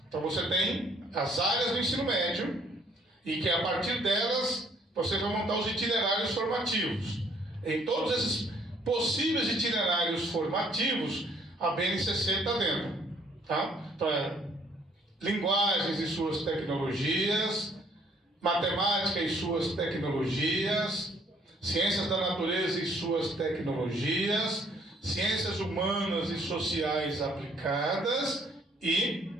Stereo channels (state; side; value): normal; both; correlation 0.63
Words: Então você tem as áreas do ensino médio, e que a partir delas você vai montar os itinerários formativos. Em todos esses possíveis itinerários formativos, a BNCC está dentro. Tá? Então linguagens e suas tecnologias, matemática e suas tecnologias, ciências da natureza e suas tecnologias, ciências humanas e sociais aplicadas e